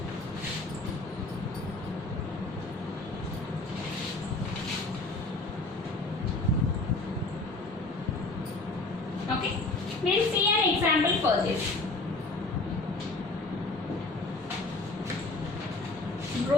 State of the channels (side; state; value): right; quieter; 3.1 dB